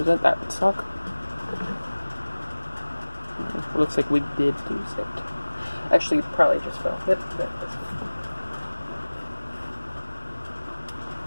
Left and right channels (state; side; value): inverted; both; correlation -1.00